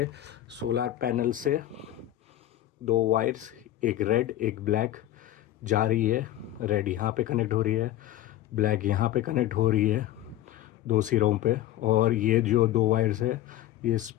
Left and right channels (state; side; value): quieter; right; 13.5 dB